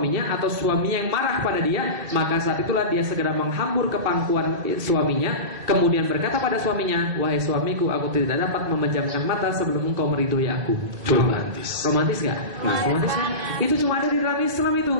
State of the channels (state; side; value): late; left; 2.7 ms